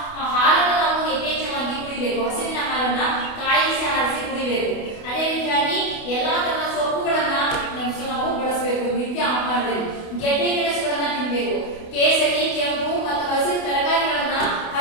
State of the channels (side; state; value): right; late; 28 ms